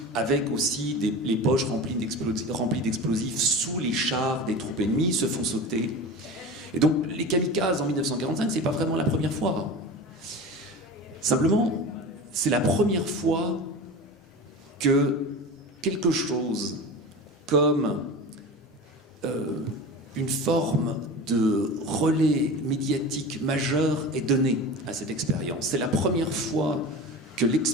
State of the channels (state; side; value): normal; both; correlation 0.31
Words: avec aussi les poches remplies d'explosifs sous les chars des troupes ennemies, se font sauter. Et donc les kamikazes en 1945, c'est pas vraiment la première fois. Simplement, c'est la première fois que quelque chose comme une forme de relais médiatique majeur est donné à cette expérience. C'est la première fois que